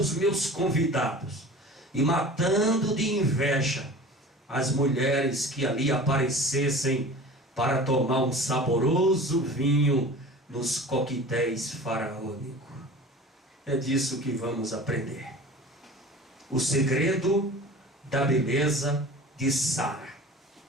meus convidados e matando de inveja as mulheres que ali aparecessem para tomar um saboroso vinho nos coquetéis faraônicos. É disso que vamos aprender. O segredo da beleza de Sara.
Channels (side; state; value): both; normal; correlation 0.39